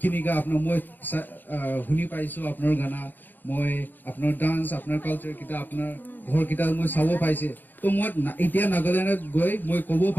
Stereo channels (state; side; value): late; right; 0.089 ms